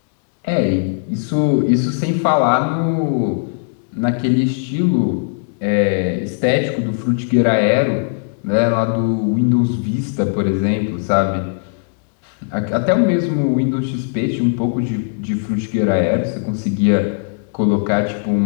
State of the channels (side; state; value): right; silent; digital silence